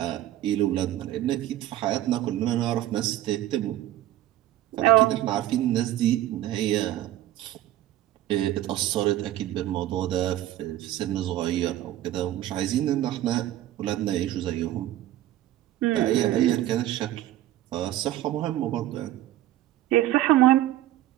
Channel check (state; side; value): quieter; left; 14.1 dB